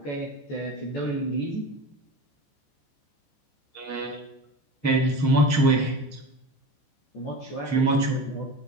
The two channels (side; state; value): right; late; 14 ms